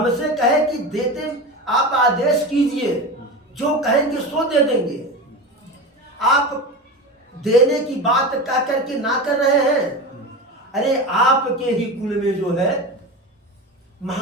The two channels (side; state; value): both; normal; correlation 0.26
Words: कहे कि देते, आप आदेश कीजिए, जो कहेंगे सो दे देंगे। आप देने की बात कह करके ना कर रहे हैं। अरे आपके ही कुल में जो है